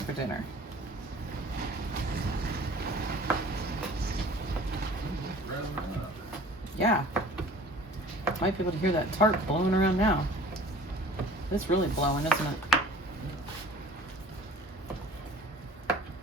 for dinner. Yeah. Might be able to hear that tart blowing around now. It's really blowing, isn't it?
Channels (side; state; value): both; normal; correlation 0.47